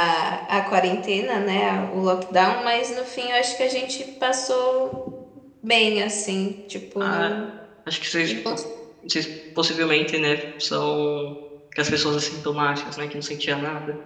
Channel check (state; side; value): identical; both; correlation 1.00